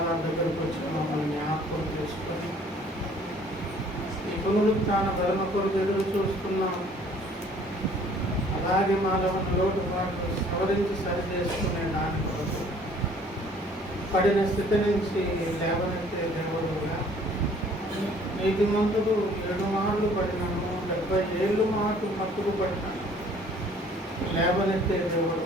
దగ్గరకు వచ్చిన మమ్మల్ని జ్ఞాపకం చేసుకొని ఈ పునరుత్థాన ధర్మ కొరకు ఎదురు చూస్తున్నాం. అలాగే మాలో లోటుపాట్లు సవరించి సరి చేసుకునే దాని కొరకు పడిన స్థితి నుంచి లేవనెత్తే దేవుడుగా నీతి మంతులు 7 మార్లు పడినాము, 70 ఏళ్ళు మాకు మత్తుకు పడినాను. లేవనెత్తే దేవుడు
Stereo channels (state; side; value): normal; both; correlation 0.56